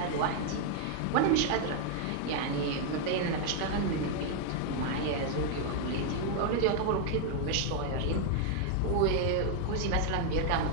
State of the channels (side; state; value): both; different; correlation 0.00